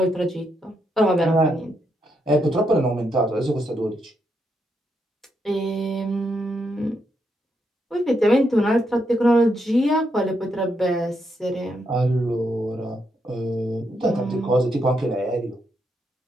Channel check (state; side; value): normal; both; correlation 0.80